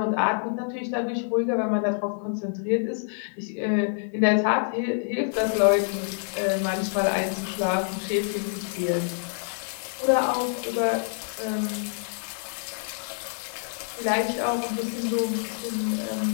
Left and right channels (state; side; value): silent; right; 60 dB below the other